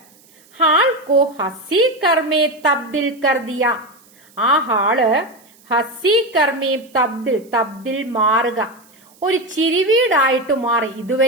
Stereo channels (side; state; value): right; noise; hiss, 29 dB below the sound